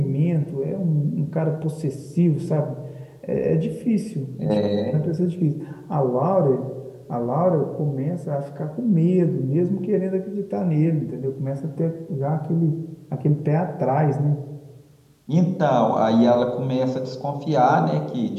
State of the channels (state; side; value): identical; both; correlation 1.00